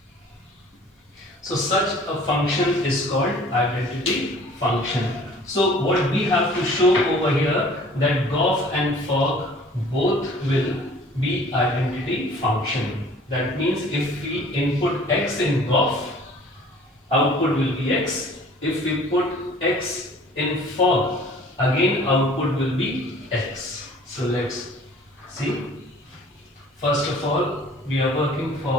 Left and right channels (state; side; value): normal; both; correlation 0.50